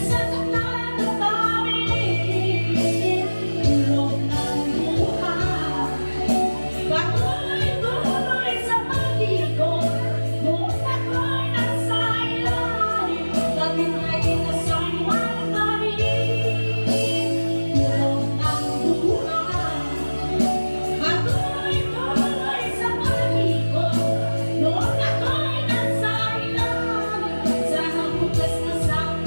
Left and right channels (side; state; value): both; inverted; correlation -1.00